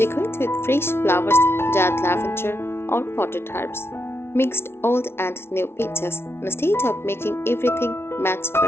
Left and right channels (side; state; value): right; late; 0.12 ms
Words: with fresh flowers, dried lavender, or potted herbs. Mixed old and new pieces instead of making everything match